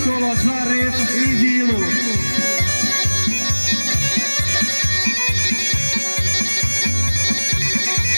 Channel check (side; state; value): both; inverted; correlation -1.00